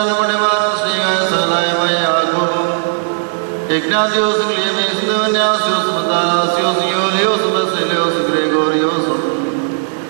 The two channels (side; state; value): left; silent; digital silence